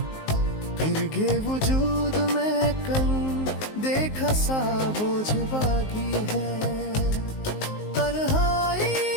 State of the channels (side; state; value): right; late; 19 ms